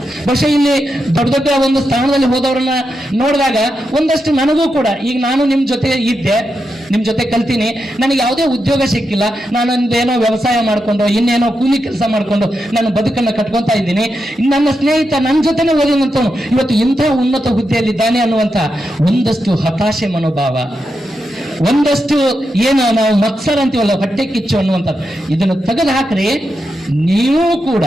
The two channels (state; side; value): normal; both; correlation 0.86